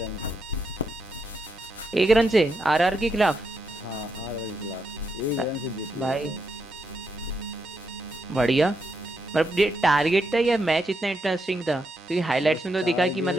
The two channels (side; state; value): both; normal; correlation 0.81